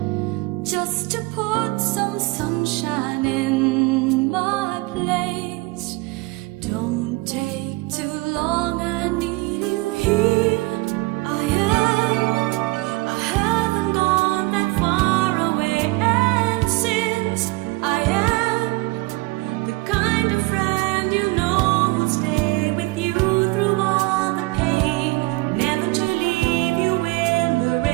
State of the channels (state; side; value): quieter; left; 23.4 dB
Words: just to put some sunshine in my place. Don't take too long, I need you here. I haven't gone that far away, and since I am the kind of friend you know will stay with you through all the pain, never to leave you in the